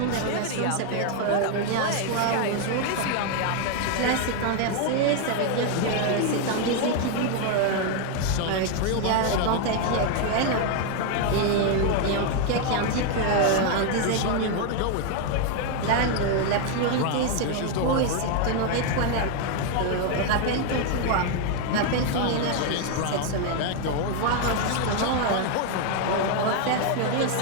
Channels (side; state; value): both; different; correlation 0.01